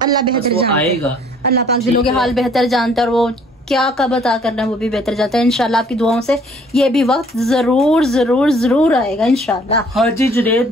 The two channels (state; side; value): normal; both; correlation 0.59